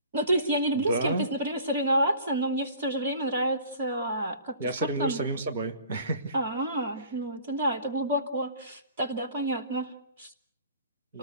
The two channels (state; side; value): inverted; both; correlation -0.47